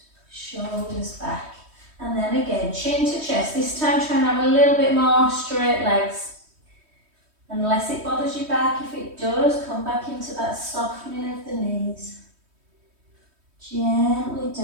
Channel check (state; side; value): late; left; 3.2 ms